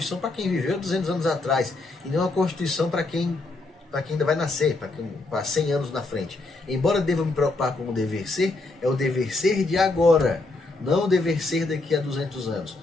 para quem viveu 200 anos atrás, e não uma Constituição para quem ainda vai nascer, para 100 anos na frente. Embora deva me preocupar com o dever ser, é o dever ser de agora, não o dever ser daqui a 200 anos.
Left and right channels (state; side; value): quieter; right; 3.2 dB